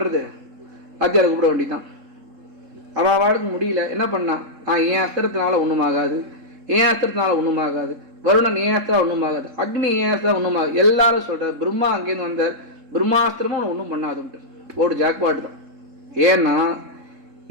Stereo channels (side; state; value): left; late; 3.7 ms